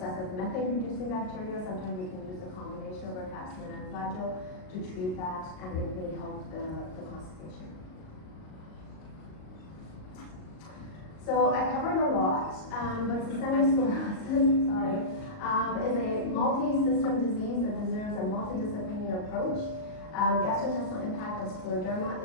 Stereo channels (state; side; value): late; right; 38 ms